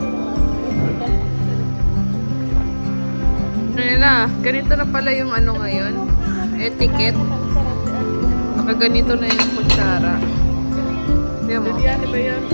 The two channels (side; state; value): both; inverted; correlation -1.00